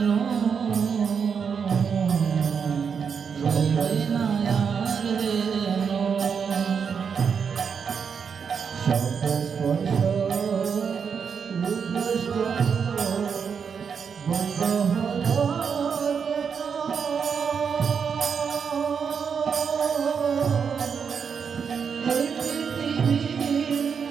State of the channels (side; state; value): left; quieter; 6.5 dB